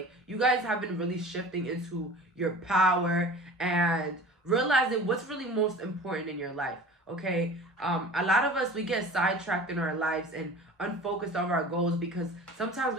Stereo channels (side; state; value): both; normal; correlation 0.40